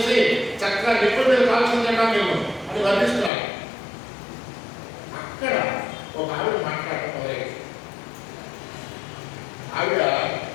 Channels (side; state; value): right; drops out; at 3.3 s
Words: చక్కగా నిప్పుల మీద కాల్చి తింటాం మేము అని వర్ణిస్తున్నాడు. అక్కడ ఒక ఆవిడ మాట్లాడటం మొదలైంది. ఆవిడ